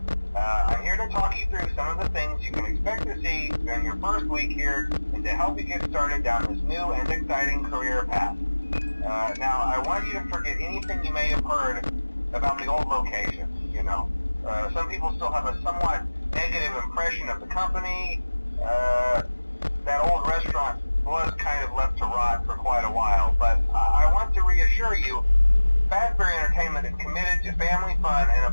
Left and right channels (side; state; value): both; inverted; correlation -1.00